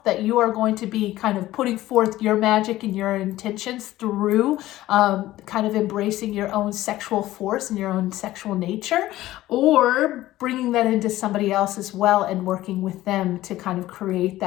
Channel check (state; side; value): quieter; right; 15.7 dB